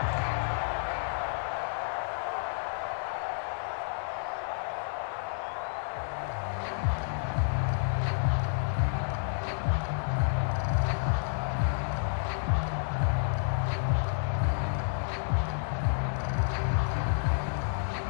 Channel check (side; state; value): right; silent; 58 dB below the other